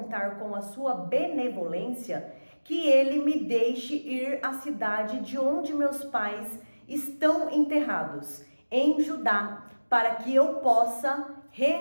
com a sua benevolência, que ele me deixe ir à cidade de onde meus pais estão enterrados, em Judá, para que eu possa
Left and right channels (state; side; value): inverted; both; correlation -1.00